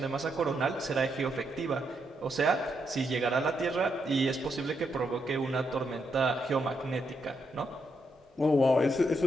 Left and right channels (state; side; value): normal; both; correlation 0.80